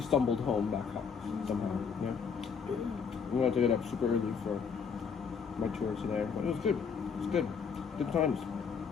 stumbled home back up somehow. Yeah. We had to get up super early for my tour today. But it was good. It was good. Good times.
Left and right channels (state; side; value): quieter; right; 6.3 dB